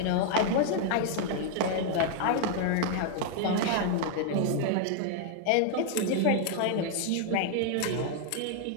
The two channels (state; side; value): different; both; correlation 0.00